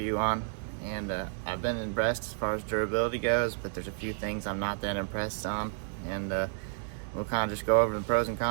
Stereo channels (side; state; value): left; silent; digital silence